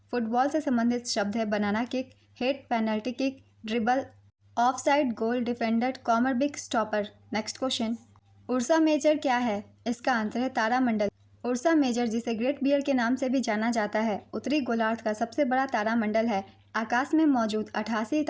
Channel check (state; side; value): identical; both; correlation 1.00